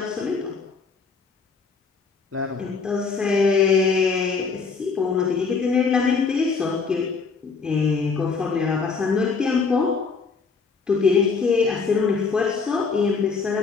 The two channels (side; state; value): right; quieter; 4.9 dB